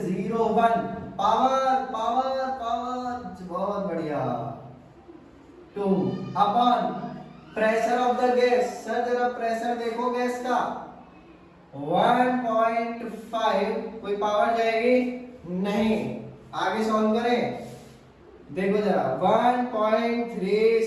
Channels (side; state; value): both; identical; correlation 1.00